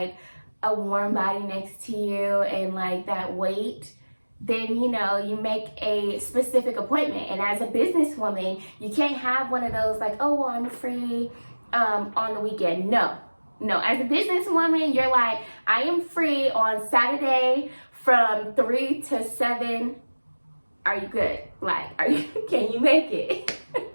a warm body next to you and like that weight, then, you know, you make a specific appointment. And as a businesswoman, you can't have one of those like, oh, well, I'm free on the weekend. No, as a businesswoman, you're like, I am free on Saturday from 3 to 7. Are you good? Like, can you make it?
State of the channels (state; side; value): inverted; both; correlation -1.00